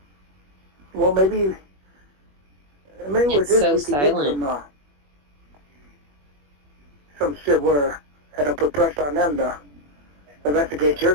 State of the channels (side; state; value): left; late; 21 ms